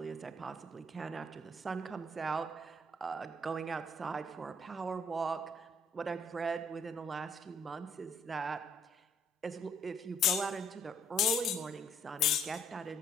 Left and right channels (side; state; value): both; normal; correlation 0.65